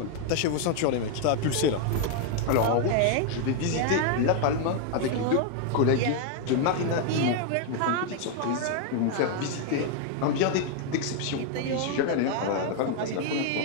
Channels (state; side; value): different; both; correlation 0.00